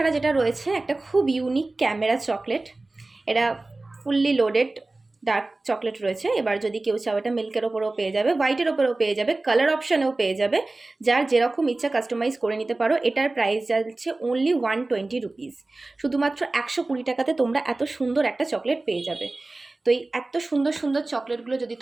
যেটা রয়েছে একটা খুব ইউনিক ক্যামেরা চকলেট। এটা ফুললি লোডেড ডার্ক চকলেট রয়েছে। এবার যদি কেউ চাও এটা মিল্কের ওপরেও পেয়ে যাবে, হোয়াইটের ওপরেও পেয়ে যাবে, কালার অপশানেও পেয়ে যাবে, যার যেরকম ইচ্ছা কাস্টমাইজ করে নিতে পারো। এটার প্রাইস যাচ্ছে অনলি 120 রুপিস। শুধুমাত্র 120 টাকাতে তোমরা এত সুন্দর একটা চকলেট পেয়ে যাবে। তো এই এত সুন্দর সুন্দর চকলেটগুলো যদি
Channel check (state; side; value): quieter; left; 3.1 dB